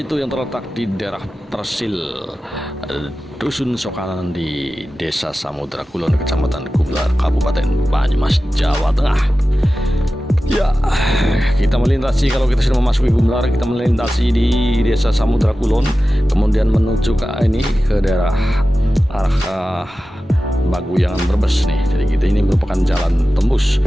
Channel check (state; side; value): normal; both; correlation 0.94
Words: yang terletak di daerah Persil, Dusun Sokanan di Desa Samudra Kulon, Kecamatan Gumlar, Kabupaten Banyumas, Jawa Tengah. Ya, kita melintasi, kalau kita sudah memasuki Gumlar, kita melintasi di Desa Samudra Kulon, kemudian menuju ke daerah arah Baguyangan Brebes nih. Jadi kita ini merupakan jalan tembus